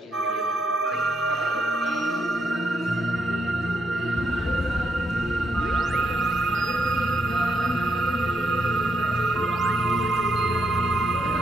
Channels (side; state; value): both; normal; correlation 0.77